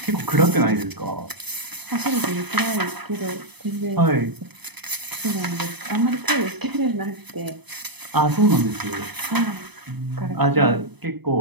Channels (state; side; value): late; left; 0.99 ms